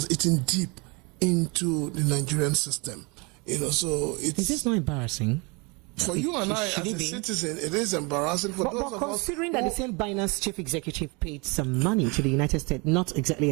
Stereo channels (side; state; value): left; quieter; 29.0 dB